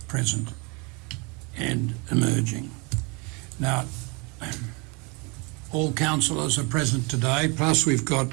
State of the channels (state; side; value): quieter; left; 30.1 dB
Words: present and emerging. Now, all councillors are present today, plus we've got